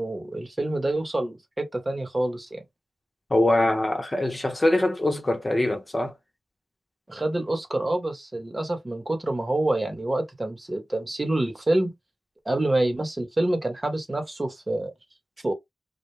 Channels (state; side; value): normal; both; correlation 0.96